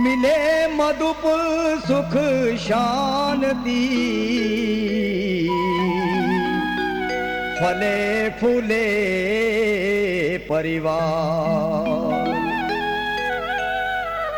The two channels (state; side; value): identical; both; correlation 1.00